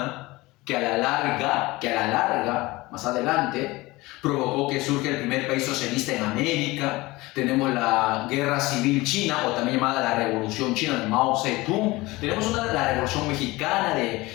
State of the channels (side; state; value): right; quieter; 21.0 dB